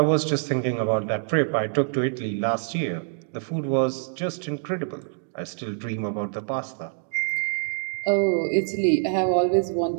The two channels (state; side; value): silent; left; 61 dB below the other